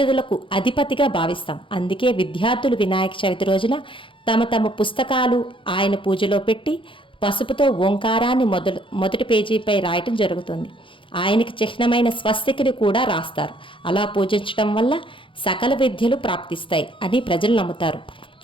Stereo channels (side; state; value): right; late; 0.25 ms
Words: అధిపతిగా భావిస్తాం. అందుకే విద్యార్థులు వినాయక చవితి రోజున తమ పుస్తకాలు ఆయన పూజలో పెట్టి పసుపుతో ఓంకారాన్ని మొదటి పేజీపై రాయటం జరుగుతుంది. ఆయనకి చిహ్నమైన స్వస్తికిని కూడా రాస్తారు. అలా పూజించడం వల్ల సకల విద్యలు ప్రాప్తిస్తాయి అని ప్రజలు నమ్ముతారు.